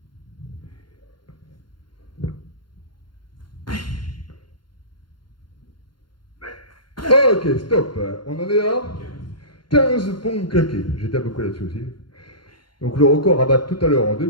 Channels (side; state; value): right; late; 0.72 ms